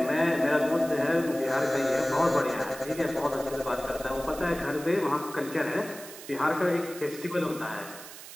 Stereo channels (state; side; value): noise; right; hiss, 14 dB below the sound